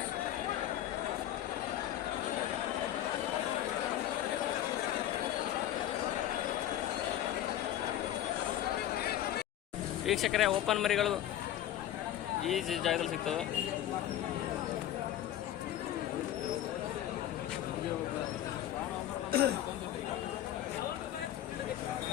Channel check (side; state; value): right; quieter; 12.2 dB